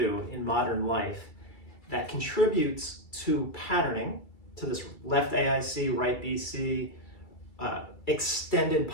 in modern life that contributes to patterning, to this left AIC, right BC, extended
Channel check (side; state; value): right; late; 2.3 ms